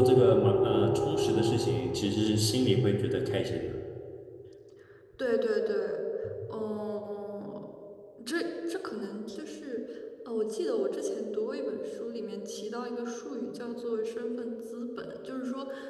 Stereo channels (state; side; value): identical; both; correlation 1.00